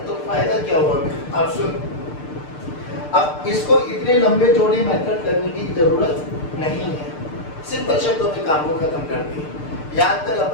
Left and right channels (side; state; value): right; late; 6.7 ms